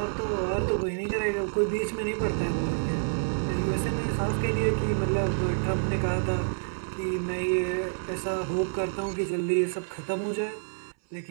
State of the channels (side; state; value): left; silent; 59 dB below the other